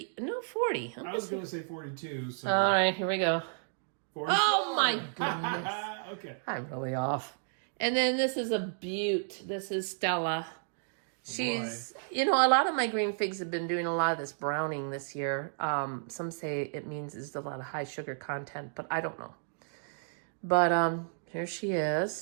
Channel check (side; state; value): left; silent; digital silence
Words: I was going to say 42. So. All right, here we go. 44. Oh my goodness. Okay. I'm really off. And then this is a beaut. This is Stella. She's, a lot of my green figs have been doing a lot of this browning this year. Some say it means there's a lot of high sugar content, but I don't know. But here she